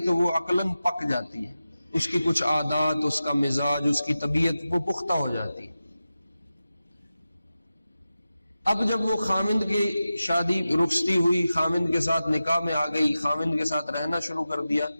تو وہ عقلاً پک جاتی ہے، اس کی کچھ عادات، اس کا مزاج، اس کی طبیعت وہ پختہ ہو جاتی ہے۔ اب جب وہ خامند کی شادی رخصتی ہوئی، خامند کے ساتھ نکاح میں آ گئی، خامند کے ساتھ رہنا شروع کر دیا،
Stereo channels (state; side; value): inverted; both; correlation -0.93